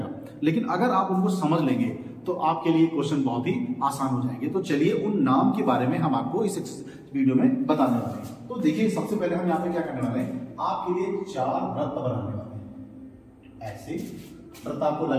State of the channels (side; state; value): both; identical; correlation 1.00